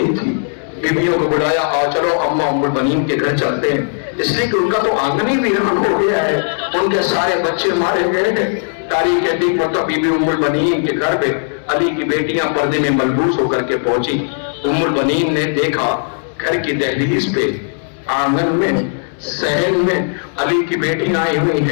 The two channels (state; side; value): silent; right; digital silence